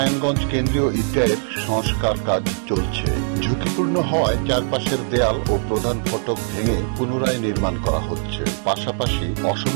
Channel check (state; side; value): silent; left; digital silence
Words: কেন্দ্রীয় ঈদগাহের সংস্কার কাজ চলছে। ঝুঁকিপূর্ণ হওয়ায় চারপাশের দেয়াল ও প্রধান ফটক ভেঙে পুনরায় নির্মাণ করা হচ্ছে। পাশাপাশি